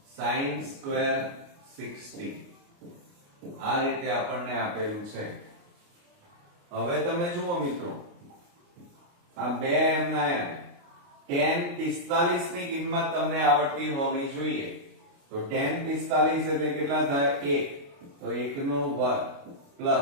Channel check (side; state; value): left; late; 29 ms